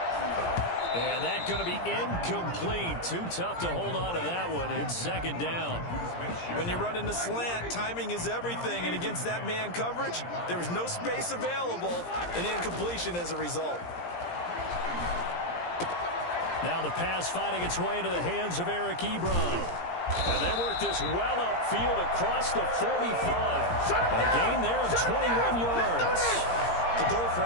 And that's going to be incomplete. Too tough to hold on to that one. It's 2nd down. When you run in the slant, timing is everything. And against that man coverage, there was no space available, and incompletion as a result. Now the pass finding its way into the hands of Eric Ebron. And they work this well upfield across the 45. A gain there of 21 yards. The goal for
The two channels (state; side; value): late; right; 17 ms